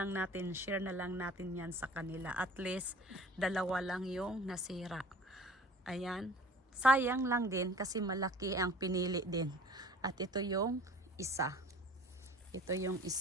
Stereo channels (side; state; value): both; normal; correlation 0.45